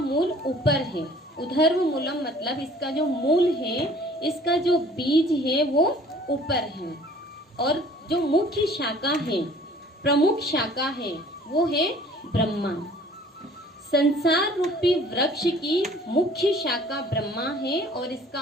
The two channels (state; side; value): normal; both; correlation 0.52